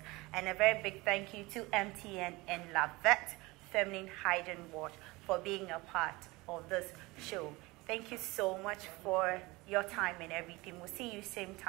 and a very big thank you to MTN and Lavette Feminine Hygiene Wash for being a part of this show. Thank you so much for your time and everything. We'll see you same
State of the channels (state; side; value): quieter; left; 22.4 dB